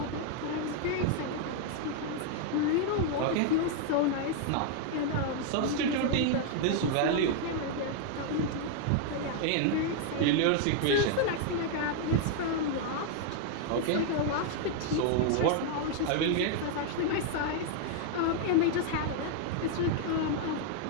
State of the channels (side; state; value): both; different; correlation 0.00